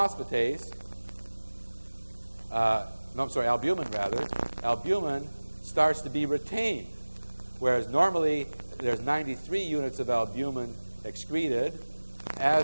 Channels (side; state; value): both; inverted; correlation -1.00